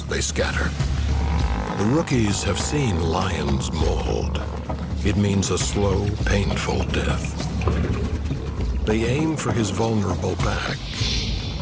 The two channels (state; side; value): identical; both; correlation 1.00